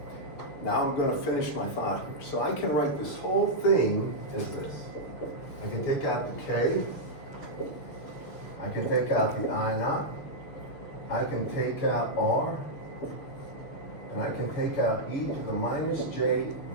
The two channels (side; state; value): right; late; 6.7 ms